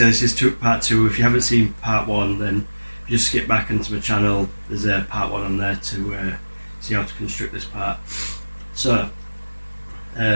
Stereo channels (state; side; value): inverted; both; correlation -1.00